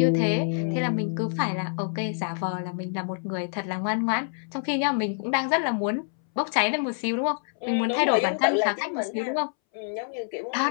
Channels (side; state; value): right; silent; 61 dB below the other